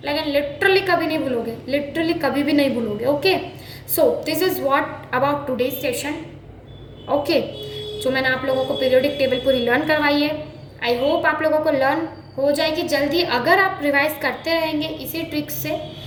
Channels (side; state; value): both; identical; correlation 1.00